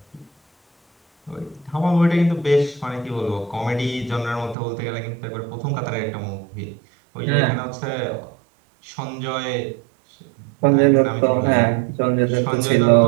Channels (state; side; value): drops out; left; at 4.5 s